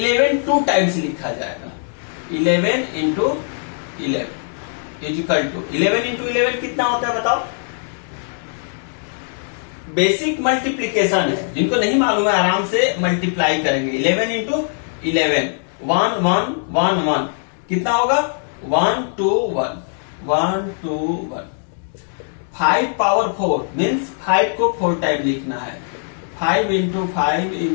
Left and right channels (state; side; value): silent; right; digital silence